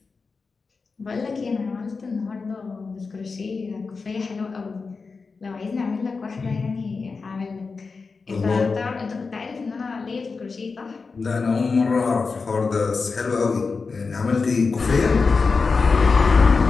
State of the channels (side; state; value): right; quieter; 4.6 dB